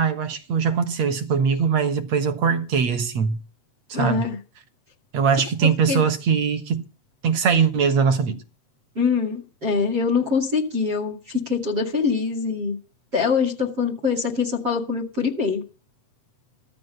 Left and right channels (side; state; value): left; late; 8.8 ms